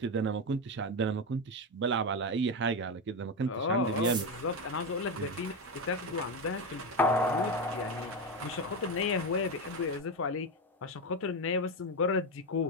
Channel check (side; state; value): both; normal; correlation 0.13